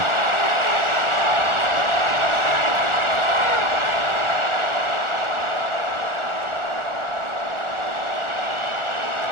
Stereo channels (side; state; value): left; late; 1.4 ms